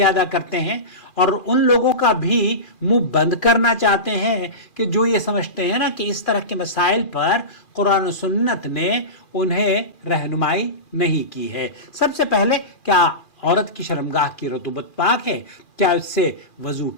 ادا کرتے ہیں اور ان لوگوں کا بھی منہ بند کرنا چاہتے ہیں کہ جو یہ سمجھتے ہیں نا کہ اس طرح کے مسائل پر قرآن و سنت نے انہیں رہنمائی نہیں کی ہے. سب سے پہلے، کیا عورت کی شرمگاہ کی رطوبت پاک ہے؟ کیا اس سے وضو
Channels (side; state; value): right; late; 2.4 ms